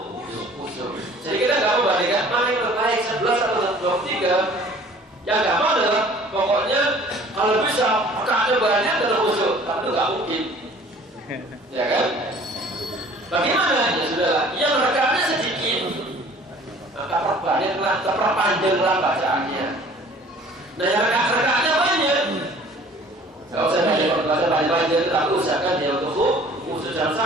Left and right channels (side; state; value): both; normal; correlation 0.51